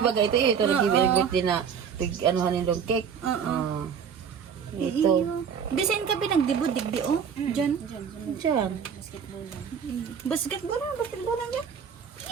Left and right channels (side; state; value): left; quieter; 7.2 dB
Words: ito nagibi din na anuhan yung cake ito Bisin ka pinagdibod, digdi, oh. Diyan. dyan Basketball yan.